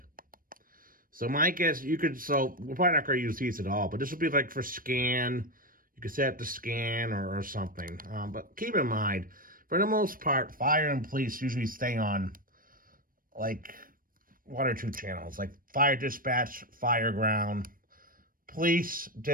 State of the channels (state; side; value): late; left; 0.41 ms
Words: So my guess, you could, so we're probably not going to use these at all, but this would be like for scan. You could set it to scan or something. But keep in mind, for the most part, fire and police usually stay on like 1 or 2 channels, like fire dispatch, fire ground, police